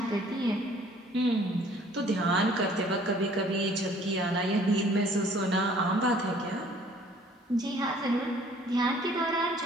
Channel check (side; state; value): both; normal; correlation 0.56